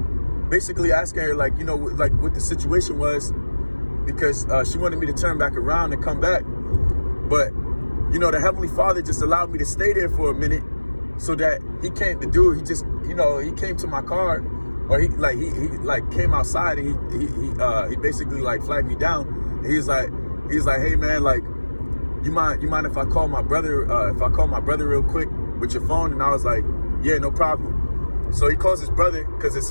basically asking her, like, you know, like what the situation was, because she wanted me to turn back around and come back. But, you know, the Heavenly Father just allowed me to stay there for a minute, so that he just, you know, he came to my car, or he came outside, and he basically like flagged me down. He's like, hey man, like, you mind if I call my brother, real quick with your phone? And I was like, yeah, no problem. So he calls his brother, because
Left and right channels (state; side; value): inverted; both; correlation -1.00